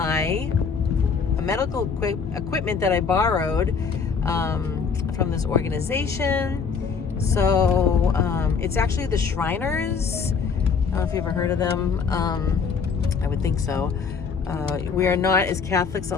medical equipment that I borrowed from this organization. So it's actually the Shriners. I don't know if you've ever heard of them. I would think so. We are not, as Catholics,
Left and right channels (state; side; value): quieter; right; 5.7 dB